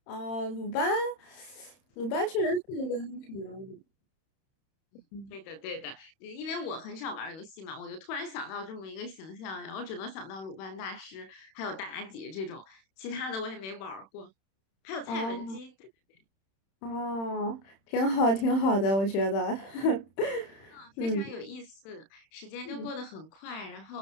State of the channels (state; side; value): late; right; 31 ms